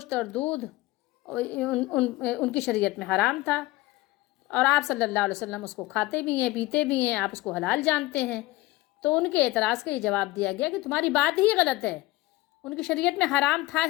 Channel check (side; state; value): right; quieter; 19.6 dB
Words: اور دودھ ان کی شریعت میں حرام تھا، اور آپ صلی اللہ علیہ وسلم اس کو کھاتے بھی ہیں، پیتے بھی ہیں، آپ اس کو حلال جانتے ہیں۔ تو ان کے اعتراض کا یہ جواب دیا گیا کہ تمہاری بات ہی غلط ہے، ان کی شریعت میں حرام تھا